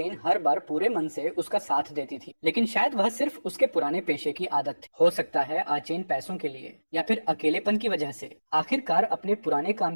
हर बार पूरे मन से उसका साथ देती थी। लेकिन शायद वह सिर्फ उसके पुराने पेशे की आदत थी। हो सकता है आचेन पैसों के लिए या फिर अकेलेपन की वजह से आखिरकार अपने पुराने काम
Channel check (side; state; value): both; inverted; correlation -1.00